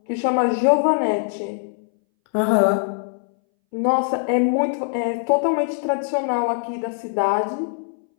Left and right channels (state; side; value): silent; right; 62 dB below the other